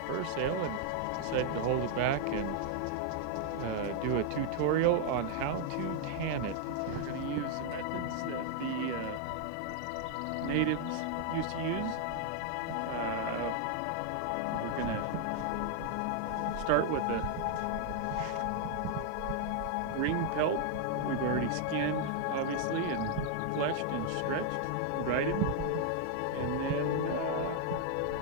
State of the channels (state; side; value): different; both; correlation 0.00